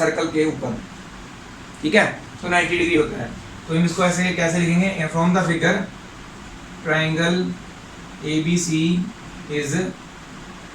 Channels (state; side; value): identical; both; correlation 1.00